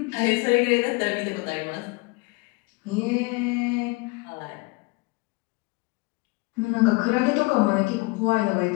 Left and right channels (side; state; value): right; quieter; 26.2 dB